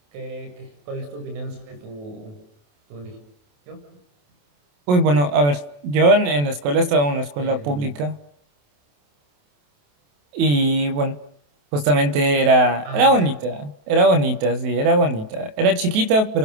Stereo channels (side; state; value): left; late; 28 ms